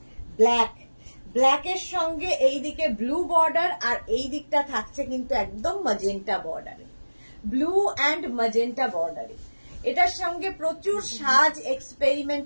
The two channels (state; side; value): inverted; both; correlation -1.00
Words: ব্ল্যাক, ব্ল্যাকের সঙ্গে এইদিকে ব্লু বর্ডার, আর এই দিকটা থাকছে কিন্তু একদম ম্যাজেন্টা বর্ডারে, ব্লু অ্যান্ড ম্যাজেন্টা বর্ডারে। এটার সঙ্গে প্রচুর সাজ